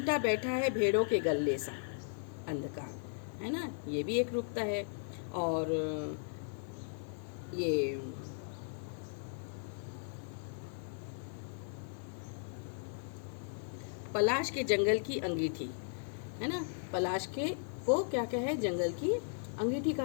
बैठा है भेड़ों के गल्ले सा, अंधकार, है ना, ये भी एक रूपता है। और ये पलाश के जंगल की अंगीठी, है ना, पलाश के को क्या क्या है? जंगल की अंगीठी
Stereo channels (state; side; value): silent; right; digital silence